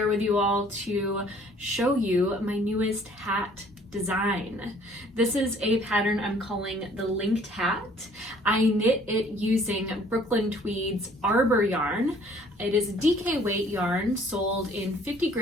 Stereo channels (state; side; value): normal; both; correlation 0.57